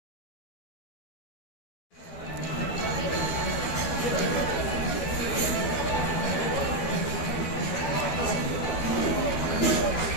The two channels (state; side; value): late; right; 12 ms